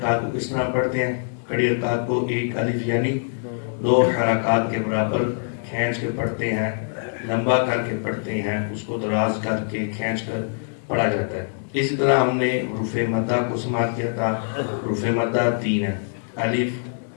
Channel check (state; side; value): silent; right; digital silence